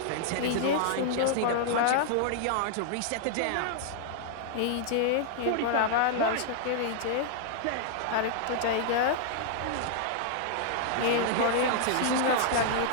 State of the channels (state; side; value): different; both; correlation -0.01